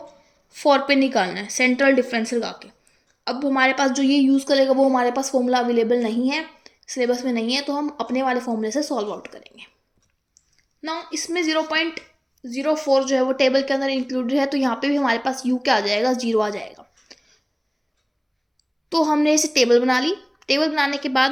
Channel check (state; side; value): identical; both; correlation 1.00